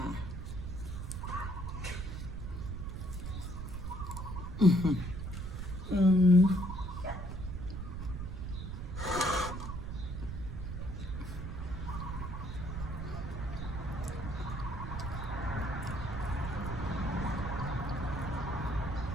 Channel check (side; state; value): right; noise; rumble, 5 dB below the sound